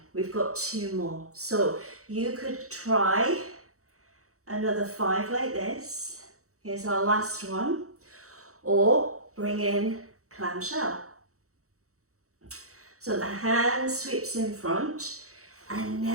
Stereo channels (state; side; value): late; left; 0.65 ms